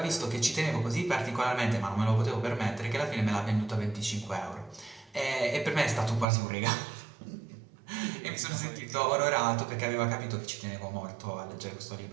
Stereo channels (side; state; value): left; drops out; at 6.2 s